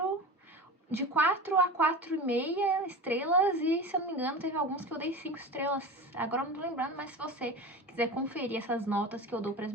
de 4 a 4,5 estrelas e, se eu não me engano, teve alguns que eu dei 5 estrelas. Agora eu não tô lembrando, mas se você quiser conferir essas notas que eu dou para as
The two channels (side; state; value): both; normal; correlation 0.30